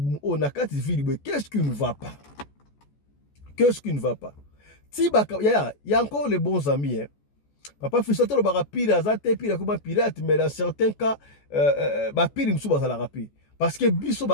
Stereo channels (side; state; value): right; late; 14 ms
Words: on a quatre villes qu'est-ce qui ne va pas si y a encore les bons amis hein. Papa Fisto le barapire azate pire comme pirate mais dans certains cas ba pire msuba za la rapide parce que biso